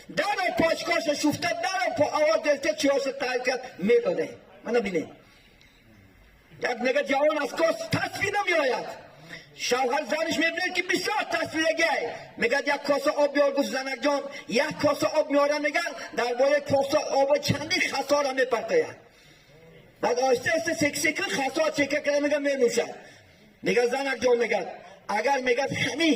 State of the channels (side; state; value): both; identical; correlation 1.00